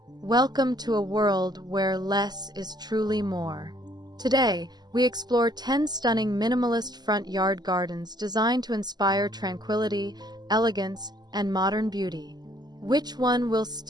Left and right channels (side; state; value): left; late; 0.20 ms